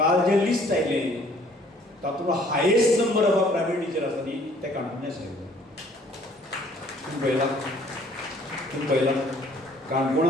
जें लिस्ट आयलें तातूंत highest number of primary teacher आसा न्ही ते काणकोणा आशिल्ले तुमी पळयलां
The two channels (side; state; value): both; normal; correlation 0.58